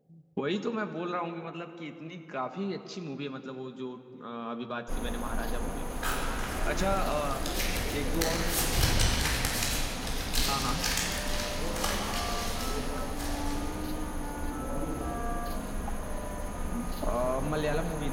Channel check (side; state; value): both; identical; correlation 1.00